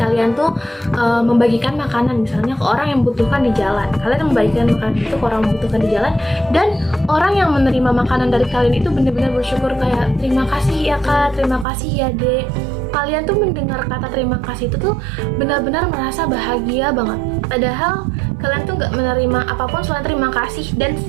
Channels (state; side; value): drops out; left; at 11.7 s